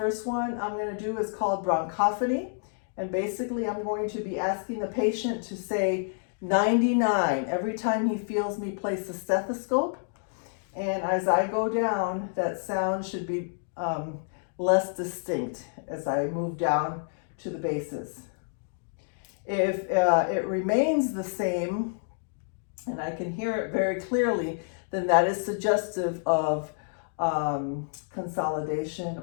one I'm going to do is called bronchophony, and basically I'm going to be asking the patient to say 99 every time he feels me place the stethoscope. And as I go down, that sound should be less distinct as I move down to the bases. If it remains the same, and I can hear it very clearly, then that is suggestive of consolidation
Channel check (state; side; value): silent; right; digital silence